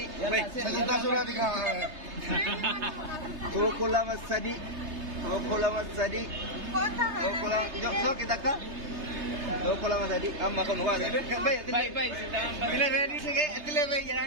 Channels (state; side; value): late; left; 3.3 ms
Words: Baik. Saganta sura dikha. Do kola masadi. Jo kita ka. Do kola masadi. Amma kan huwa. Baik. Bila ready se ke atle be